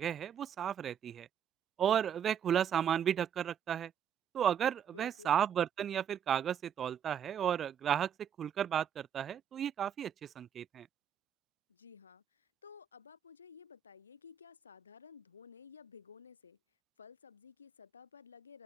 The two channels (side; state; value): left; quieter; 8.8 dB